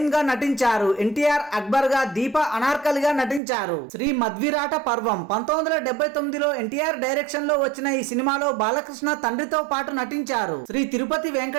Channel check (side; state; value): left; drops out; at 3.4 s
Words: గా నటించారు. ఎన్టీఆర్ అక్బర్ గా, దీప అనార్కలిగా నటించారు. శ్రీ మధ్విరాట పర్వం 1979లో ఎన్టీఆర్ డైరెక్షన్ లో వచ్చిన ఈ సినిమాలో బాలకృష్ణ తండ్రితో పాటు నటించారు. శ్రీ తిరుపతి